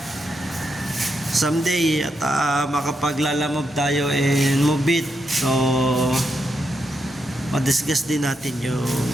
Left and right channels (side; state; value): both; normal; correlation 0.82